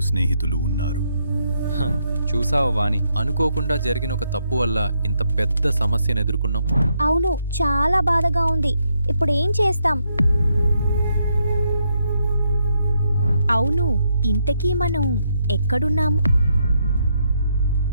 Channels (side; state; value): both; inverted; correlation -0.76